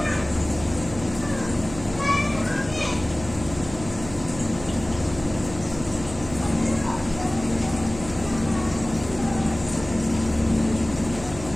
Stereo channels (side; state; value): right; noise; hum, 13 dB below the sound